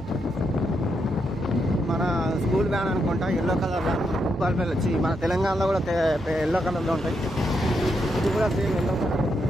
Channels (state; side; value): normal; both; correlation 0.81